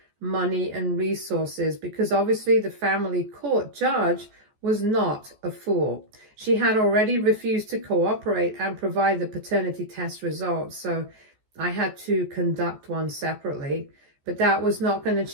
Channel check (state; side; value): late; left; 14 ms